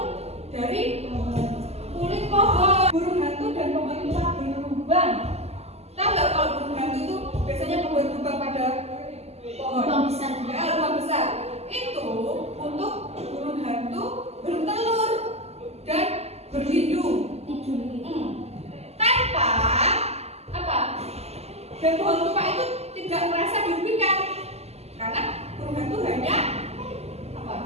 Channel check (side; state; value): left; late; 0.30 ms